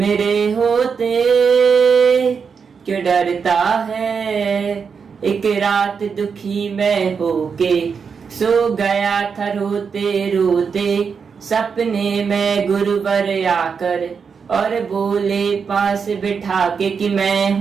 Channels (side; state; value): left; quieter; 6.0 dB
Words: होते, क्यों डरता है। एक रात दुखी मैं होके सो गया था रोते रोते, सपने में गुरुवर आकर और बोले पास बिठा के कि मैं